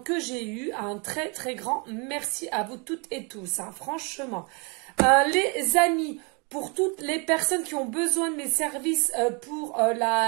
j'ai eus. Un très très grand merci à vous toutes et tous, hein, franchement. Les amis, pour toutes les personnes qui ont besoin de mes services pour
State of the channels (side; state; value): left; quieter; 32.8 dB